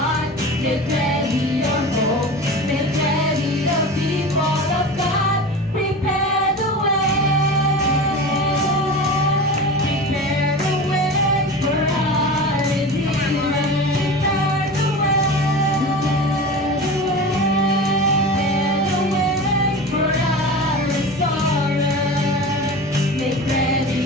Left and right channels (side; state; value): both; normal; correlation 0.32